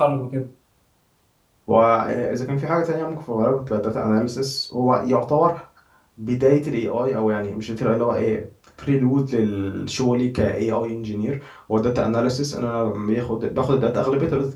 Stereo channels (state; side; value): identical; both; correlation 1.00